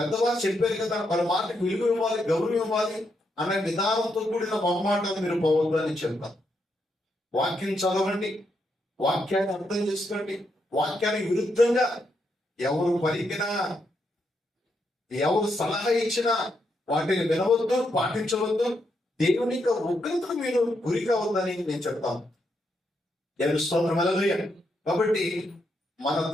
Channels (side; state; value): both; normal; correlation 0.80